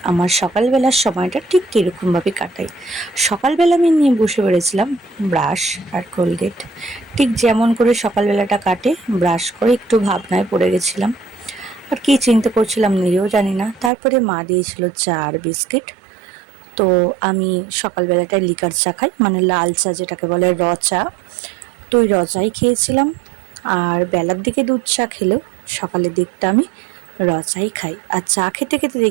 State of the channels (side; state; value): left; drops out; at 13.9 s